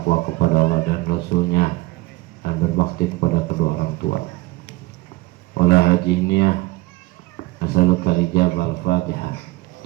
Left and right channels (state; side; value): quieter; left; 20.6 dB